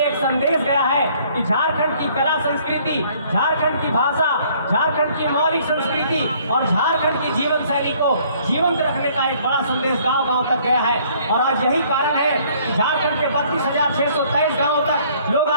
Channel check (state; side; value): inverted; both; correlation -0.60